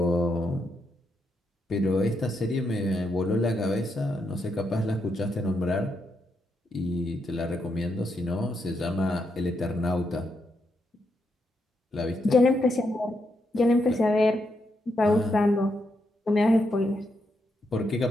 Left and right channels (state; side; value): normal; both; correlation 0.81